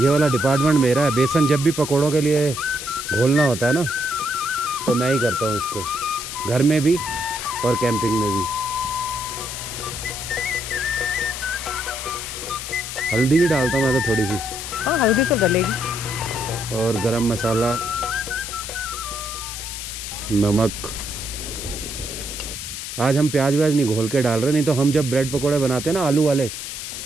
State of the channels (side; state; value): left; noise; hiss, 7 dB below the sound